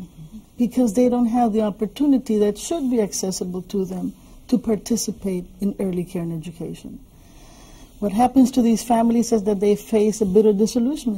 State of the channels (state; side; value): identical; both; correlation 1.00